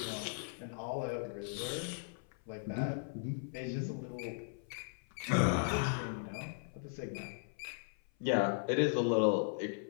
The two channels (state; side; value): silent; right; 53 dB below the other